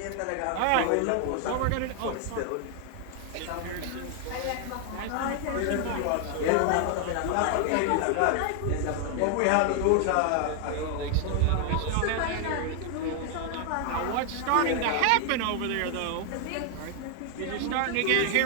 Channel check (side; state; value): both; different; correlation 0.00